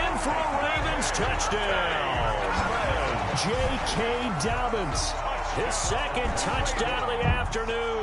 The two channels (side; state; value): both; identical; correlation 1.00